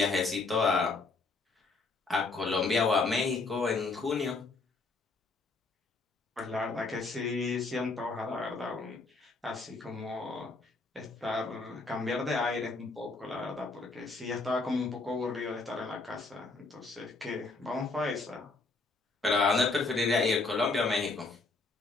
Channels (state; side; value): quieter; right; 3.7 dB